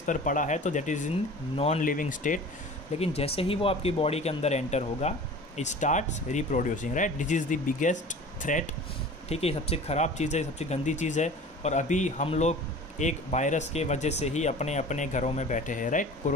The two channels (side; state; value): both; normal; correlation 0.41